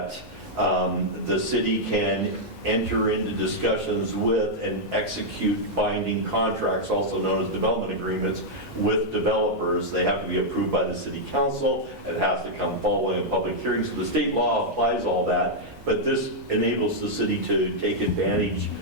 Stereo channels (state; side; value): normal; both; correlation -0.04